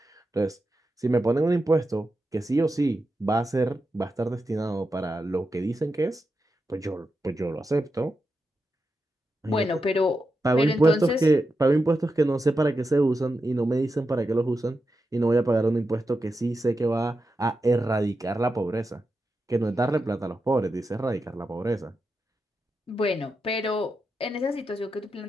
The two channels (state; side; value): normal; both; correlation 0.88